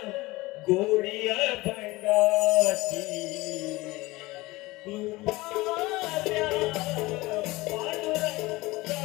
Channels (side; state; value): right; quieter; 20.8 dB